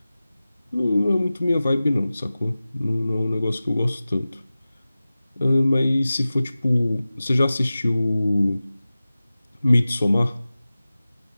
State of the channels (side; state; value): both; inverted; correlation -0.96